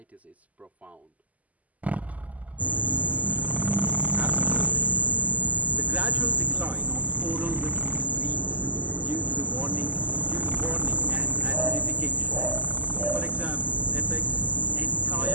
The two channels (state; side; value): late; left; 0.074 ms